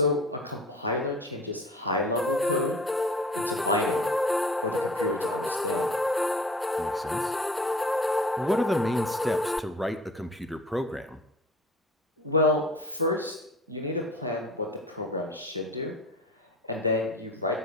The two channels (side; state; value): both; normal; correlation 0.43